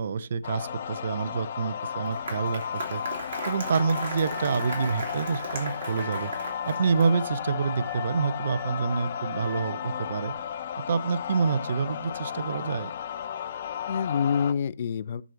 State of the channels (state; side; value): inverted; both; correlation -0.75